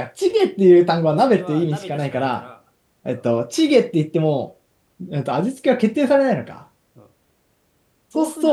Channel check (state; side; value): identical; both; correlation 1.00